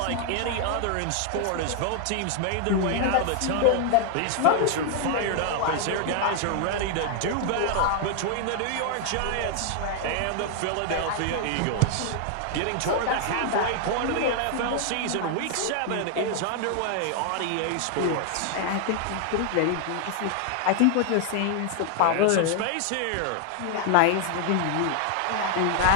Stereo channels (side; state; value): both; different; correlation 0.00